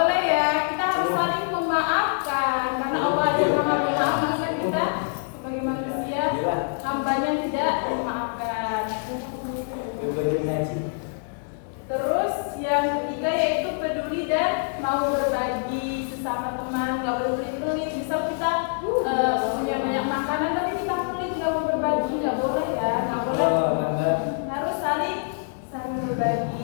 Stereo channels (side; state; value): right; silent; digital silence